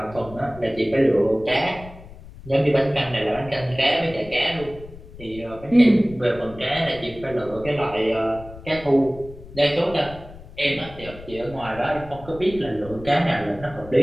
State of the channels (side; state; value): left; noise; rumble, 17 dB below the sound